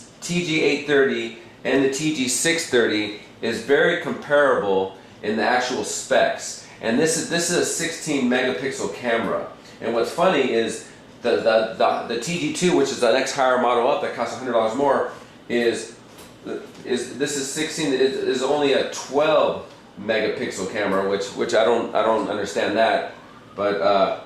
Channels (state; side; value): identical; both; correlation 1.00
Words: TG-830 and the TG-630 is very comparable in the actual specs. And this is a 16 megapixel camera. And what's funny is the TG-2, which is the next higher model up that costs $100 more, is only a 12 megapixel camera, which I don't understand that. But